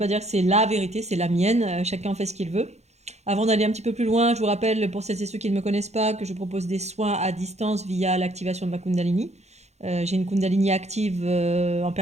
dire que c'est la vérité, c'est la mienne. Chacun fait ce qu'il veut. Avant d'aller un petit peu plus loin, je vous rappelle, pour celles et ceux qui ne me connaissent pas, que je propose des soins à distance via l'activation de ma Kundalini. J'ai une Kundalini active en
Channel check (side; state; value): left; late; 0.32 ms